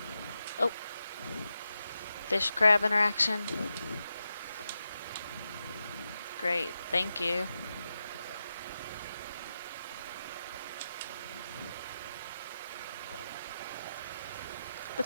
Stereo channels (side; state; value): both; inverted; correlation -0.88